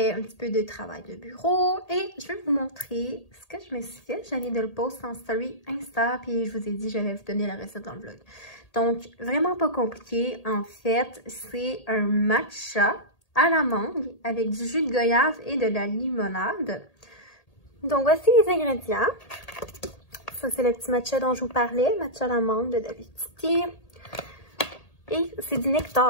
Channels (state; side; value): late; right; 1.8 ms